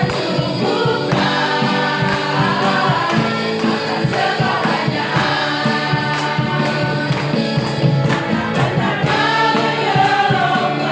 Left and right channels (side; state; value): both; identical; correlation 1.00